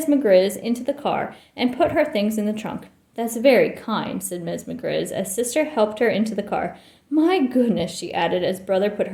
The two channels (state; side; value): identical; both; correlation 1.00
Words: McGriz into the car and put her things in the trunk. That's very kind, said Ms. McGriz as Sister helped her into the car. My goodness, she added as Brother put